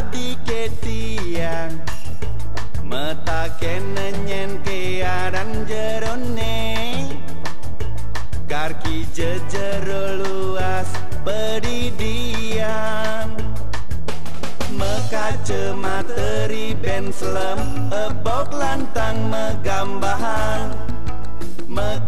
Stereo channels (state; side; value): identical; both; correlation 1.00